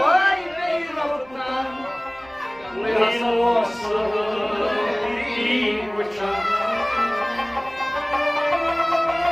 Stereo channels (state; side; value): noise; right; rumble, 28 dB below the sound